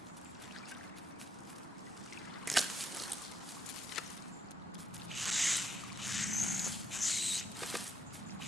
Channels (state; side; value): normal; both; correlation 0.77